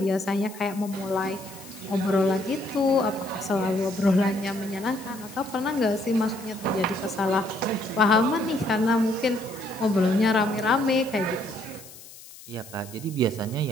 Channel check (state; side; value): noise; left; hiss, 18 dB below the sound